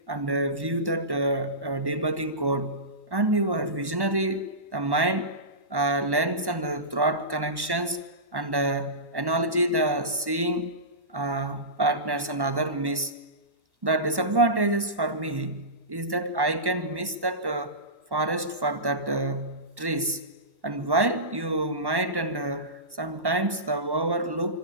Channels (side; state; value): left; late; 1.1 ms